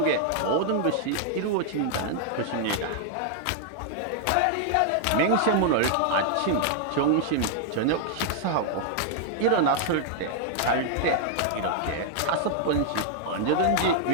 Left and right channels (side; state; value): both; different; correlation 0.00